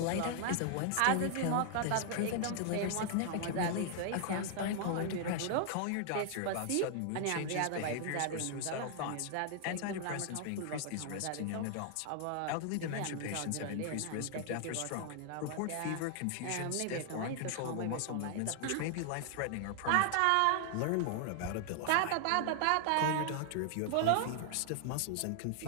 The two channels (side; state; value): both; different; correlation 0.00